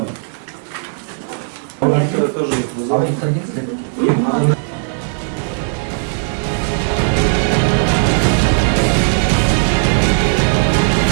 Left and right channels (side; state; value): left; silent; digital silence